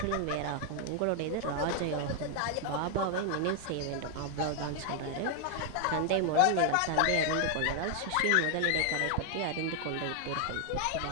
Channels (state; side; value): different; both; correlation 0.00